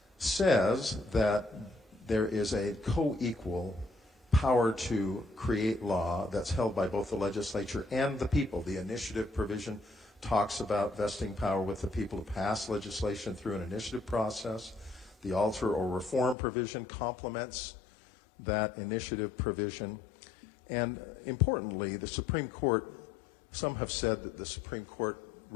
says that there is a co-equal power to create law that's held by both the legislature and the people. The initiative provision talks about vesting power with the people to pass legislation through an initiative process. The alter or reform provision complements that initiative provision. And importantly, the Supreme Court, some have said that the Supreme Court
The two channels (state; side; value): drops out; right; at 16.4 s